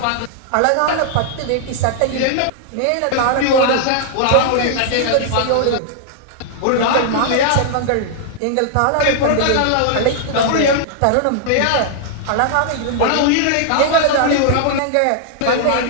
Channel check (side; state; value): both; different; correlation -0.01